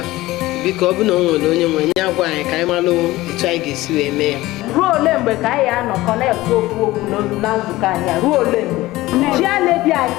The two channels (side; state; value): right; quieter; 18.0 dB